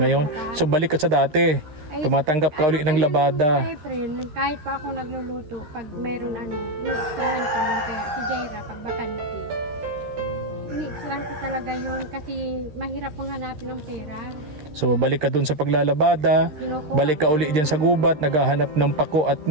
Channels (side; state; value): left; late; 13 ms